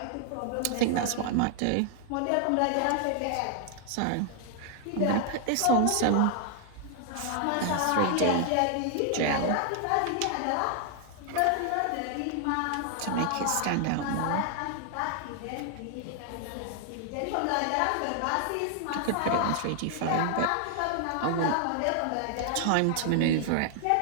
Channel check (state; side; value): different; both; correlation 0.00